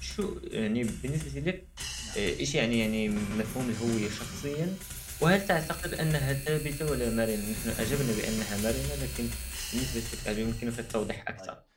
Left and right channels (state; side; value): identical; both; correlation 1.00